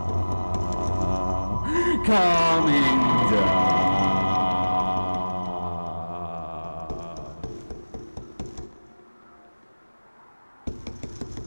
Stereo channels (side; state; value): both; inverted; correlation -1.00